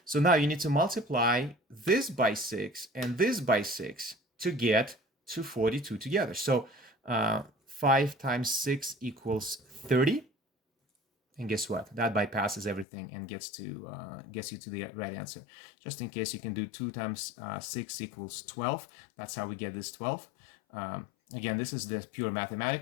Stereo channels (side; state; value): right; drops out; at 12.9 s